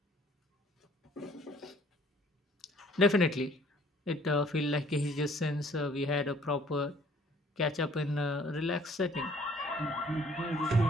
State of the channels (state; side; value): normal; both; correlation 0.58